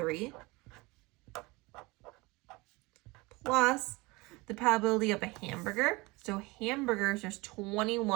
Plus the probability of a hamburger. So hamburgers, there's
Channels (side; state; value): left; quieter; 24.0 dB